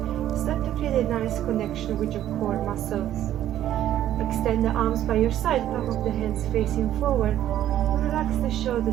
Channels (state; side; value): quieter; left; 12.0 dB